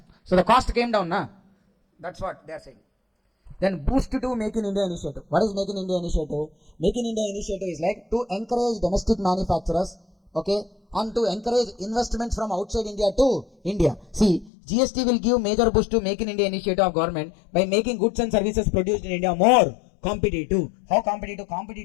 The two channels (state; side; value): drops out; right; at 14.5 s